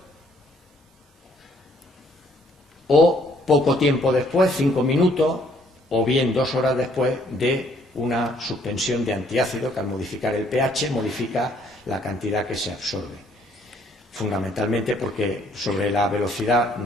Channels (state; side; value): normal; both; correlation 0.64